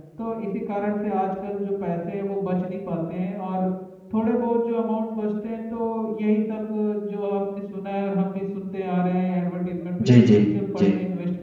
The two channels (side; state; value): both; identical; correlation 1.00